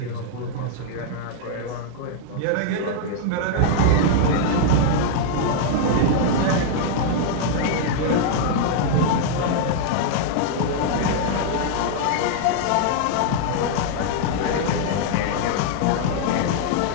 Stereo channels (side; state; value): both; different; correlation -0.01